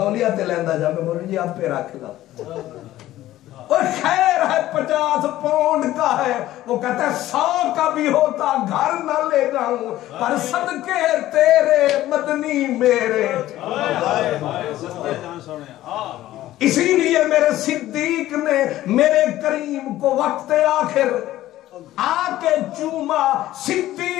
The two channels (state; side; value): quieter; right; 14.6 dB